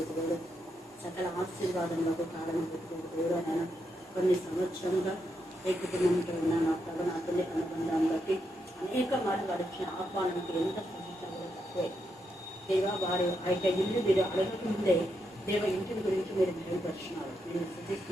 సకల ఆశీర్వాదములకు కారణం పెట్టుకుని దేవుడు ఆయన కొన్ని సంవత్సరంగా ఏ కుటుంబంతో ఉన్న నా తల్లి అనుబంధాన్ని బట్టి అనేక మార్లు వారి ఇచ్చిన ఆహ్వానానికి ఎంత సూచించాలో తక్కువే. దేవ వారి ఆ ఇల్లు మీరు అడగకముందే దేవ ఇంటిని గురించి మీరు మెరుగుపరుచున్నారు. నేను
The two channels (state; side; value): normal; both; correlation 0.82